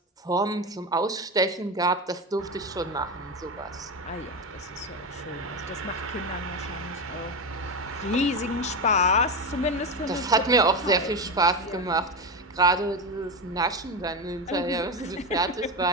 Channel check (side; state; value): both; normal; correlation 0.17